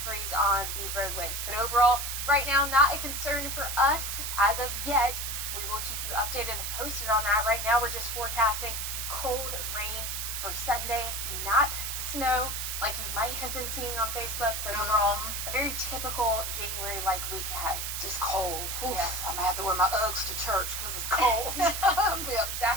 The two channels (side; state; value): right; noise; hiss, 3 dB below the sound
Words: freeze on the roadways. But overall, right now, not a concern for us as of yet. We will keep you updated and posted on that. Right now, we're just forecasting cold rain for Sunday, not snow like you might have been seeing on Facebook, but overall, a very typical January-like week ahead. Just cold. Oof. Yes. I'm going to have to wear my Uggs to church because it's cold.